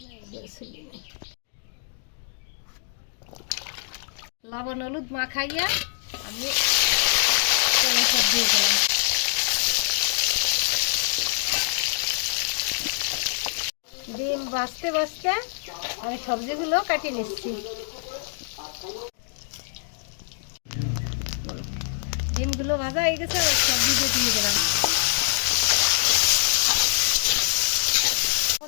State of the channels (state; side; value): silent; right; digital silence